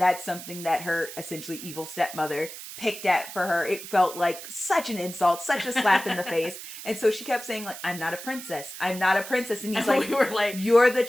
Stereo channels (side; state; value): right; noise; hiss, 12 dB below the sound